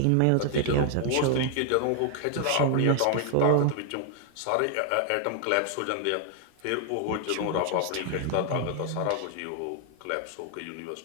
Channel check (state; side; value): different; both; correlation 0.00